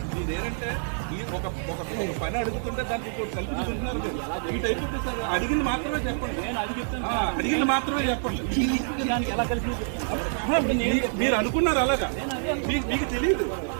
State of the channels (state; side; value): silent; left; digital silence